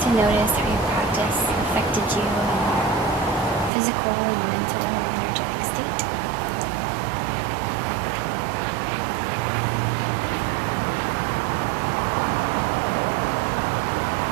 notice how your practice affected you in your physical and mental and energetic state.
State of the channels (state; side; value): drops out; left; at 3.7 s